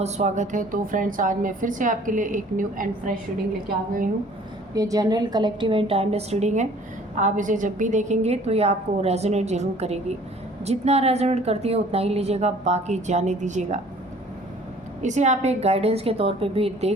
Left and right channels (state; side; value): normal; both; correlation 0.53